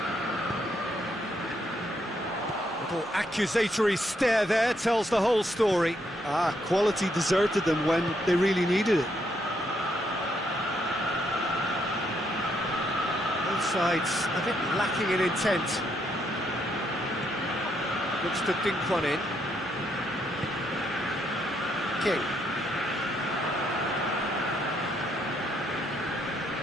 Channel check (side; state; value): both; normal; correlation 0.75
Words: Little accusatory stare there tells the whole story. Quality deserted them when they really needed it. Both sides a bit lacking in intent. Looks to dink one in. King.